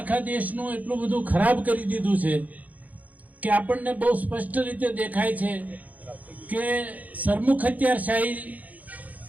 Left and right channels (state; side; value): late; left; 0.078 ms